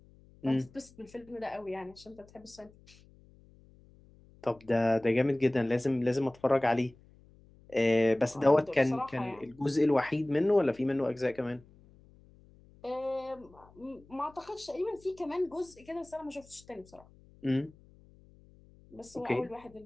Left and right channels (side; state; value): left; noise; hum, 26 dB below the sound